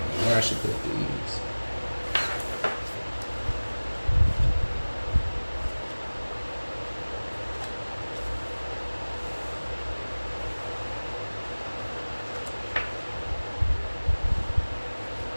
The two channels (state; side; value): inverted; both; correlation -1.00